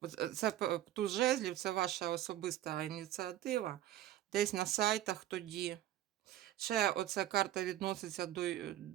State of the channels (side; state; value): left; quieter; 13.1 dB